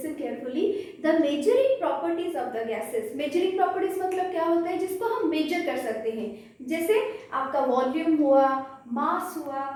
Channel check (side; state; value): both; identical; correlation 1.00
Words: carefully. The measuring properties of the gases. Measuring properties मतलब क्या होता है जिसको हम मेजर कर सकते हैं. जैसे आपका वॉल्यूम हुआ, मास हुआ